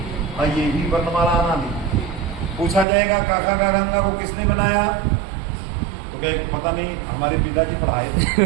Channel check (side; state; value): left; drops out; at 2.9 s